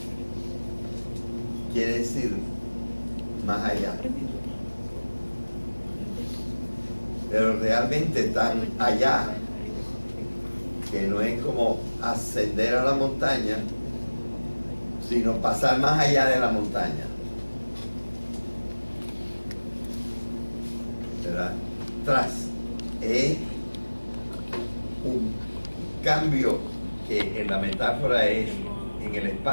quiere decir más allá, pero realmente tan allá que no es como ascender a la montaña, sino pasar más allá de la montaña, ¿verdad? Tras es un cambio que en la metáfora es en el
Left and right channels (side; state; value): both; inverted; correlation -1.00